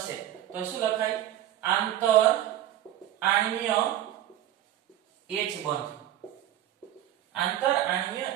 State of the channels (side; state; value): left; quieter; 12.6 dB